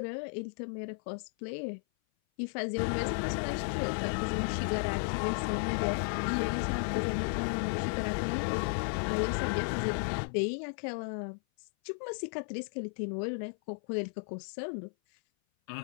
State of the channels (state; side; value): silent; right; 55 dB below the other